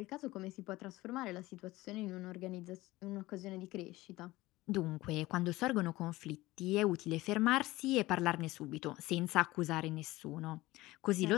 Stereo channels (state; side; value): quieter; right; 18.8 dB